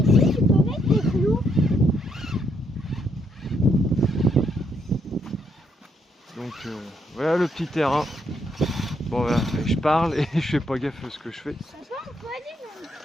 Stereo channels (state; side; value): normal; both; correlation 0.75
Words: tu peux mettre des clous. Donc voilà le petit terrain. Bon voilà, je parle et je fais pas gaffe à ce que je fais. Ça va, on peut aller dans le